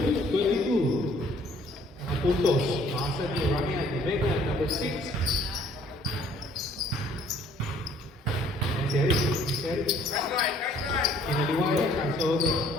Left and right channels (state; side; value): normal; both; correlation 0.59